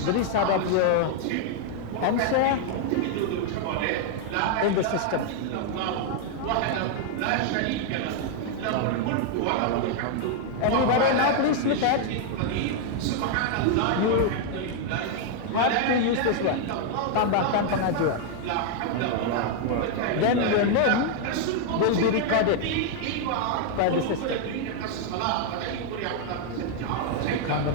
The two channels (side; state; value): both; different; correlation 0.00